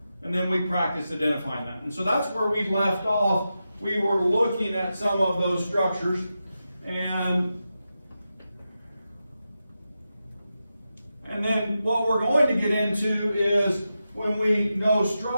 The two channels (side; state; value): both; inverted; correlation -0.90